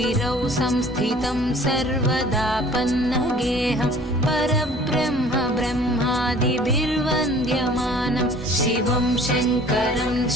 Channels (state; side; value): normal; both; correlation 0.50